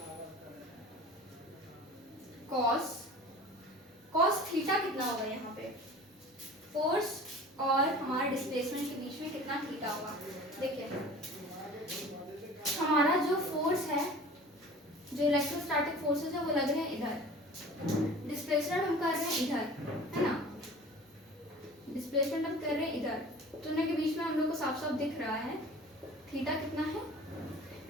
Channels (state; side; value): normal; both; correlation 0.42